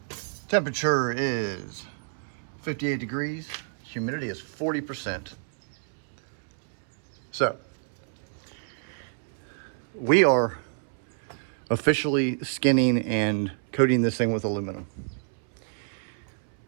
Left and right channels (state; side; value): silent; left; 59 dB below the other